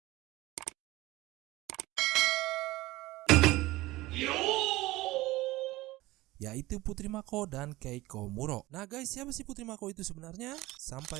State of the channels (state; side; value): quieter; left; 18.8 dB